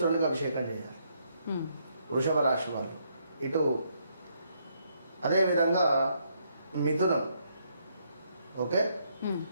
అభిషేకం చేయాలి వృషభ రాశి వాళ్ళు. ఇటు అదేవిధంగా మిథునం, ఓకే,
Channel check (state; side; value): inverted; both; correlation -0.73